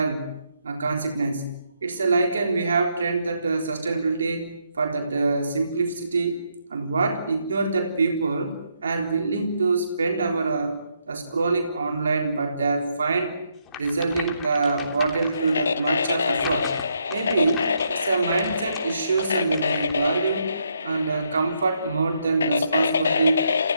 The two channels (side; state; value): both; inverted; correlation -0.77